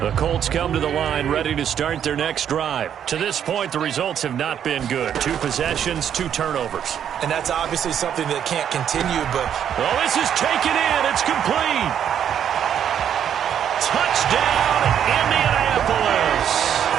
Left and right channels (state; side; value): quieter; left; 9.2 dB